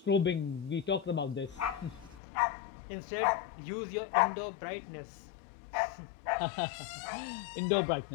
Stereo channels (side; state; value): right; drops out; at 2.2 s